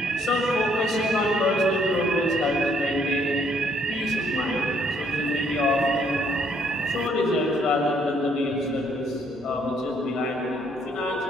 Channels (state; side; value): normal; both; correlation 0.67